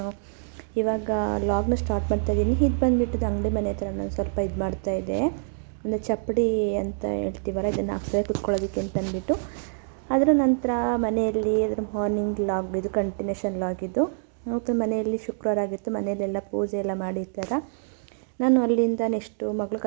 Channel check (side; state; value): left; silent; digital silence